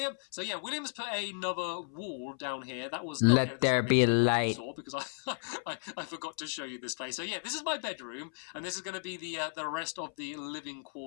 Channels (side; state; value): right; silent; 55 dB below the other